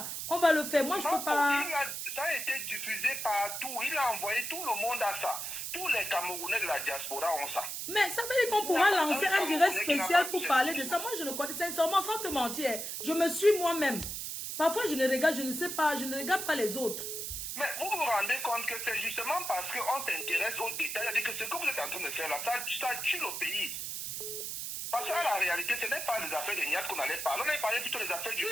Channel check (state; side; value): noise; right; hiss, 5 dB below the sound